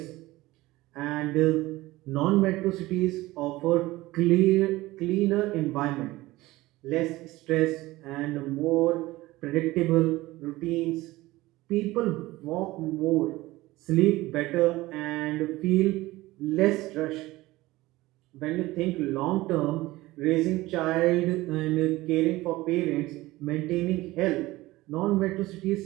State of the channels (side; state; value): left; quieter; 18.7 dB